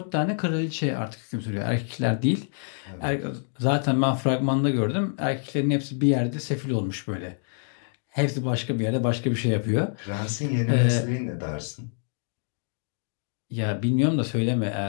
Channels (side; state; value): right; silent; digital silence